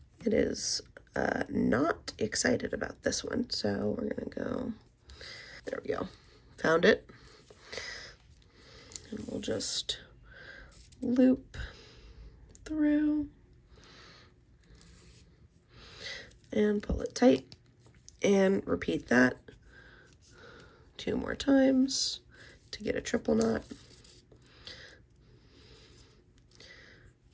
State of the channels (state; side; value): identical; both; correlation 1.00